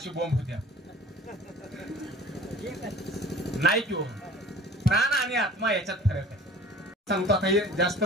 बोंब होत्या नाही किंवा प्राण आणि आत्मा याच्यात फरक आहे. सांगतो आता हे जास्त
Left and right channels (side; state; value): both; normal; correlation 0.45